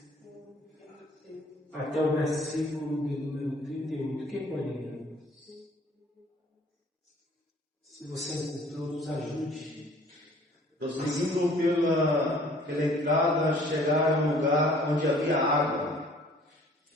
até o versículo de número 38. Quem pode ler? Se você encontrou, nos ajude. Prosseguindo pela entrada, chegaram a um lugar onde havia água.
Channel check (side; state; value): both; normal; correlation 0.54